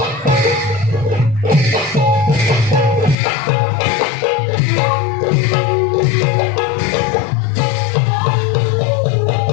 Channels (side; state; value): right; drops out; at 3.2 s